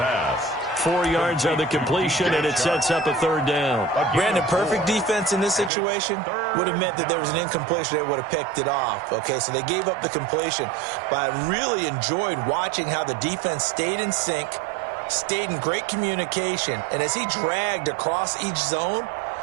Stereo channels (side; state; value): left; drops out; at 5.7 s